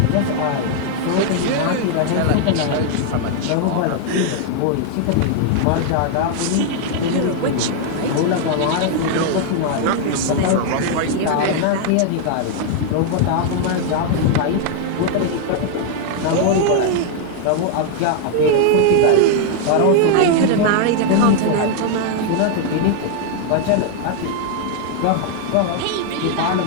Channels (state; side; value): different; both; correlation 0.00